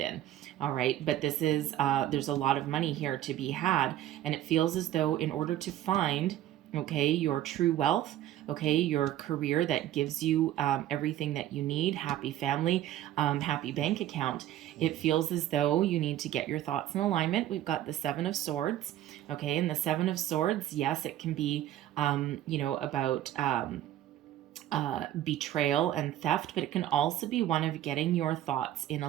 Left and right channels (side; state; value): left; quieter; 12.8 dB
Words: All right, but this is there's a lot of money here to be had, and it feels as though in order to find, okay, your true wealth, okay, your career that gives you everything that you need, happy family, happy bank account, it feels as though you need to get your thoughts in alignment. We've got the Seven of Swords, okay, and the Seven of Swords, yes, it can be, about betrayal and theft, but it can also be one of getting your thoughts in